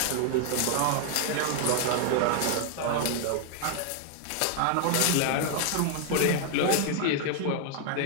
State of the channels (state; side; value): different; both; correlation 0.00